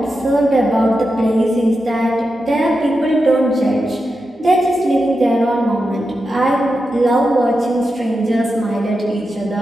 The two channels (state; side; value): normal; both; correlation 0.89